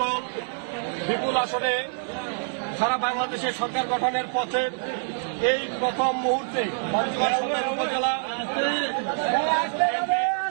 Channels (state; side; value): silent; left; 60 dB below the other